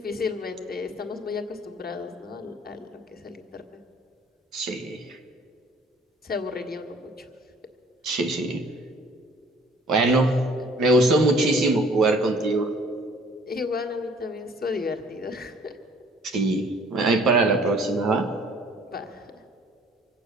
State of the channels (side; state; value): both; normal; correlation 0.55